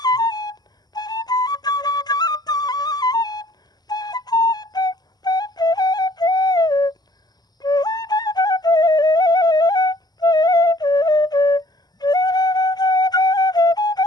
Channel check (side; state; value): right; late; 0.20 ms